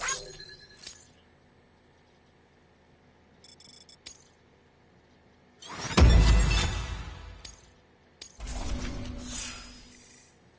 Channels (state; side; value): identical; both; correlation 1.00